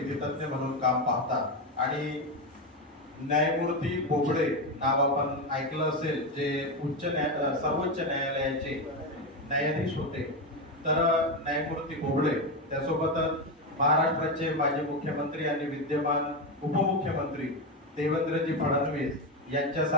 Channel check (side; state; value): both; normal; correlation 0.12